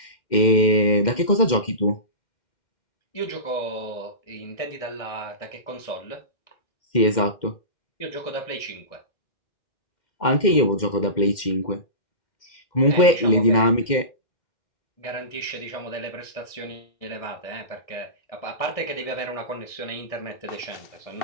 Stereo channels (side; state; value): right; late; 2.1 ms